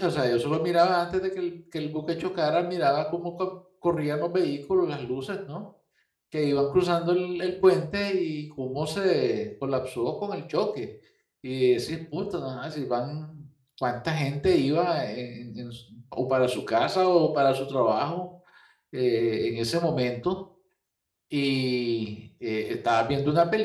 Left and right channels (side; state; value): both; identical; correlation 1.00